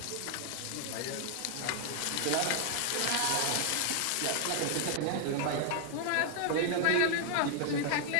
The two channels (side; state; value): both; different; correlation 0.00